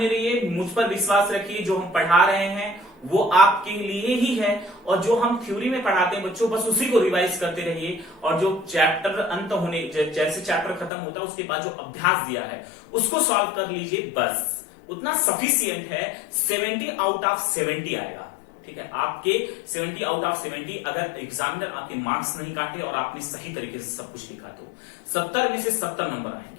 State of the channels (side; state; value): right; drops out; at 10.9 s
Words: रहिए, मुझ पर विश्वास रखिए, जो हम पढ़ा रहे हैं वो आपके लिए ही है। और जो हम थ्योरी में पढ़ाते हैं बच्चों, बस उसी को रिवाइज करते रहिए। और जो चैप्टर अंत होने जैसे चैप्टर खत्म होता है उसके बाद जो अभ्यास दिया है उसको सॉल्व कर लीजिए, बस उतना सफिशियंट है। 70 आउट ऑफ 70 आएगा, ठीक है। आपके 70 आउट ऑफ 70 अगर एग्जामिनर आपके मार्क्स नहीं काटे और आपने सही तरीके से सब कुछ लिखा तो 70 में से 70 नंबर